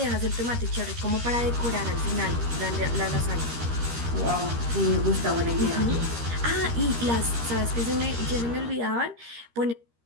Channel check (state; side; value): late; left; 13 ms